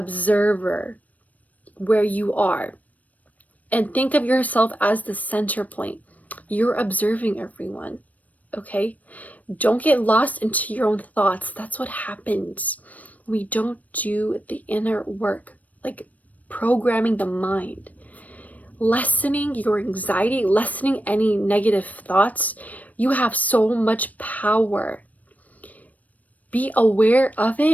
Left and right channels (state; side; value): late; right; 0.073 ms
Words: where you are. And think of yourself as the center point. You're observing everyone, okay? Don't get lost into your own thoughts. That's what happens. We don't do the inner work, like programming the mind. Lessening your anxiety, lessening any negative thoughts. You have so much power. Be aware of